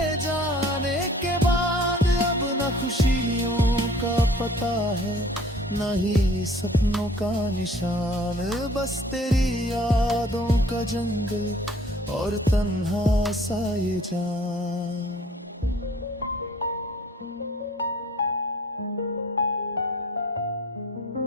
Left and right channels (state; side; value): normal; both; correlation 0.52